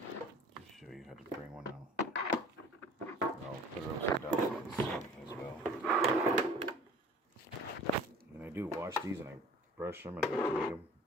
Just show you how to bring one out. I'll put it upside down so you can see as well. And I do wash these and I brush them and I make them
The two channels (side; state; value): both; normal; correlation 0.48